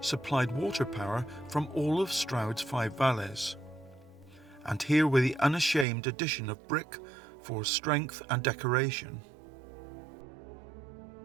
supplied water power from all of Stroud's 5 valleys. And here were the unashamed addition of brick for strength and decoration.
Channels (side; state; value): left; drops out; at 5.9 s